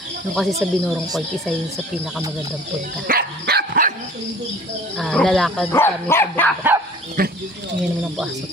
Nung kasi sa Binorong Point, isa yun sa pinakamagandang punta. Lalakad kami sa bundok. Ngayon naman ang puaso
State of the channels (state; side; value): normal; both; correlation 0.47